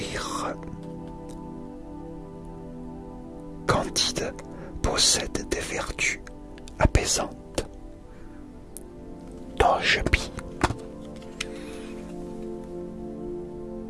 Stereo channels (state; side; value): identical; both; correlation 1.00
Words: candide possède des vertus apaisantes. Togepi.